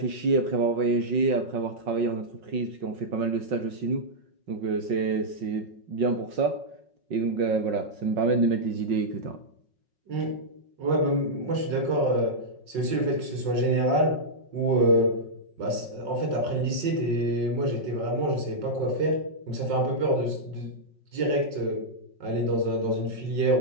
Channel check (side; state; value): left; late; 5.4 ms